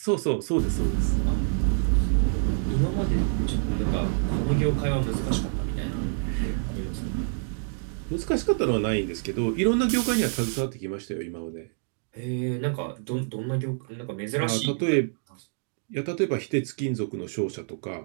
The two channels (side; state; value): left; silent; digital silence